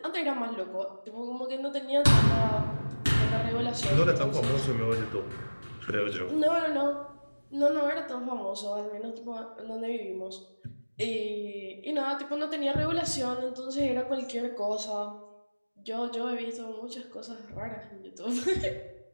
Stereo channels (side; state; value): both; inverted; correlation -1.00